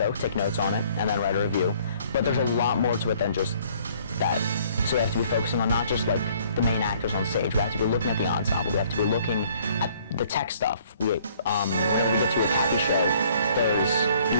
take notes on it, and then write a review. But there's a lot more to it than just that. So we have to be focusing on not just the main actors on stage. We have to be looking at the ensemble. We have to be looking at the tech stuff. Whenever we get to a Cappies show, there's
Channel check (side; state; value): both; inverted; correlation -0.59